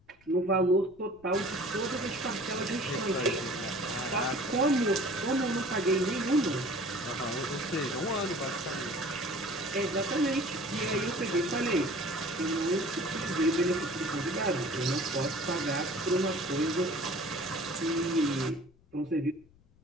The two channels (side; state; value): left; noise; rumble, 29 dB below the sound